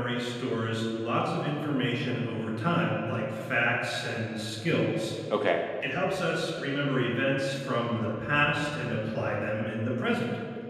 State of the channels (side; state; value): both; identical; correlation 1.00